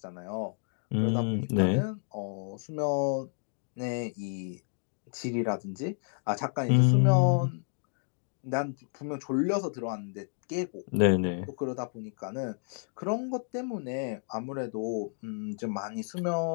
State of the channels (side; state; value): right; silent; 57 dB below the other